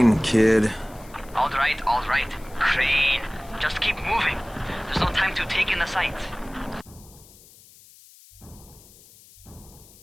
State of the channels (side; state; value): left; noise; hiss, 24 dB below the sound